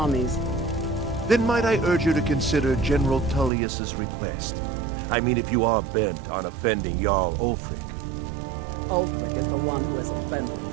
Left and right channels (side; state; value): left; drops out; at 3.5 s